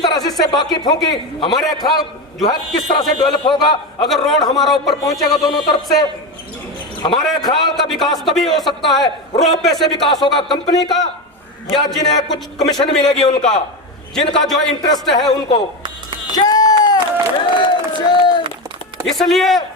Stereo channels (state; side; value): normal; both; correlation 0.17